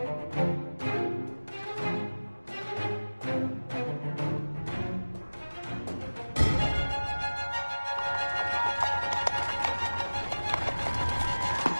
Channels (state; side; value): inverted; both; correlation -1.00